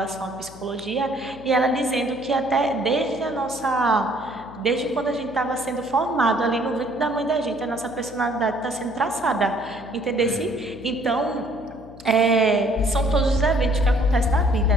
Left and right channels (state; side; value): noise; left; hum, 19 dB below the sound